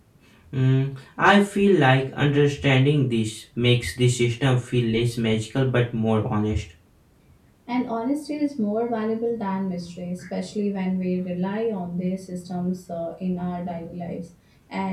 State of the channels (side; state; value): both; identical; correlation 1.00